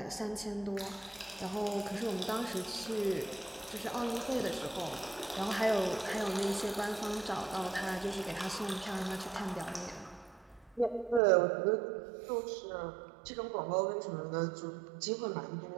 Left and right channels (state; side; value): drops out; left; at 11.2 s